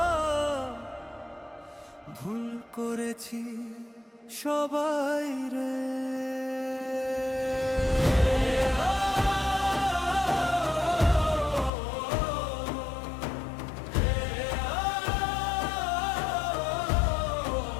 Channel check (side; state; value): right; drops out; at 11.7 s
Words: ভুল করেছি সবাই রে।